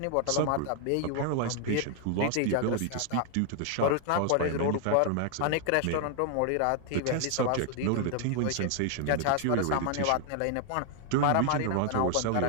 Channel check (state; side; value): different; both; correlation 0.00